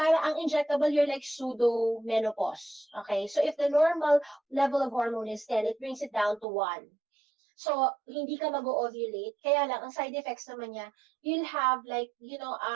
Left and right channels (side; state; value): left; drops out; at 6.5 s